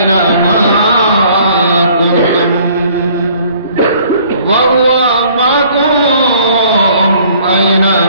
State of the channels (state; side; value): inverted; both; correlation -0.57